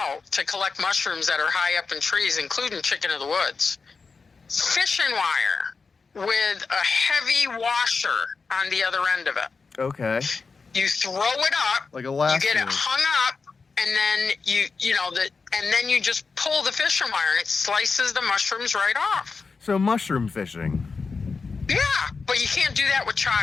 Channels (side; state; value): right; quieter; 4.7 dB